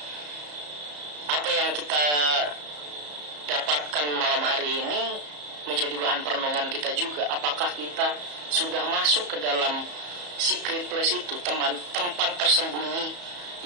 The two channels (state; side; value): late; left; 34 ms